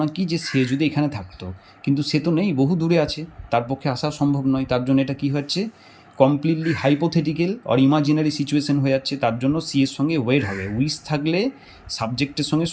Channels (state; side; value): identical; both; correlation 1.00